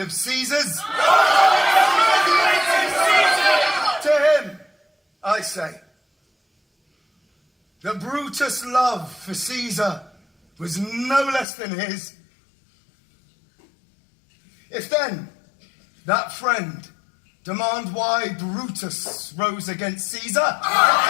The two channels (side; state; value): right; drops out; at 11.5 s